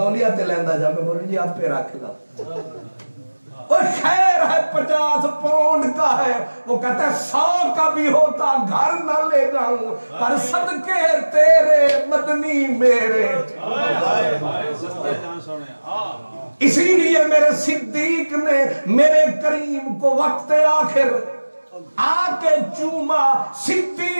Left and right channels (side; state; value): both; inverted; correlation -1.00